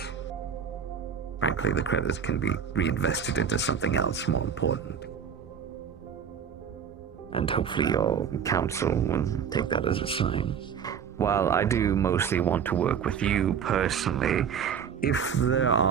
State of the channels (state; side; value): quieter; left; 7.4 dB